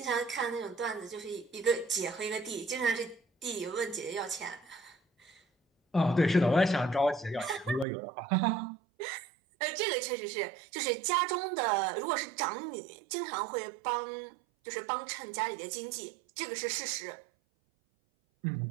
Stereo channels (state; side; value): drops out; left; at 7.9 s